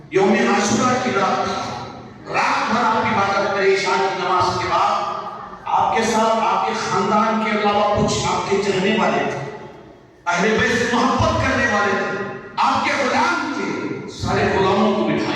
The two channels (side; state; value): both; identical; correlation 1.00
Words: یوم عاشورہ کی رات بھر آپ عبادت کرے، عشاء کی نماز کے بعد آپ کے ساتھ آپ کے خاندان کے علاوہ کچھ آپ کے چہنے والے تھے، اہل بیت سے محبت کرنے والے تھے، آپ کے غلام تھے، سارے غلاموں کو